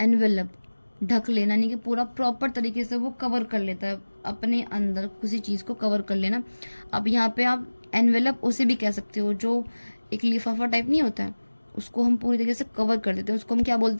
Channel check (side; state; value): both; inverted; correlation -1.00